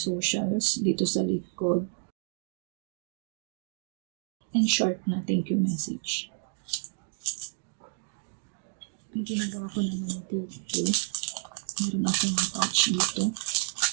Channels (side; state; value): left; silent; digital silence